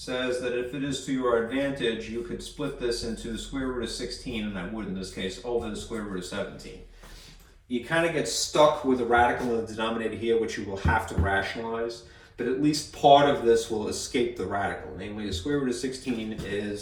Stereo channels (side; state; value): both; identical; correlation 1.00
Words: that if it is to your advantage, you could split this into the square root of 16, and I would in this case, over the square root of 17. You kind of get stuck with a radical in the denominator here, which you will have to rationalize, but at least part of this will escape the radical. Namely, the square root of 16